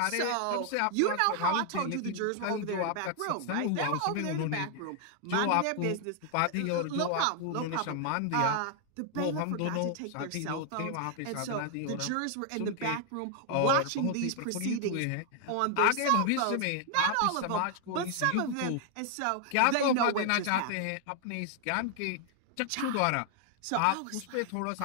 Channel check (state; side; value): different; both; correlation 0.00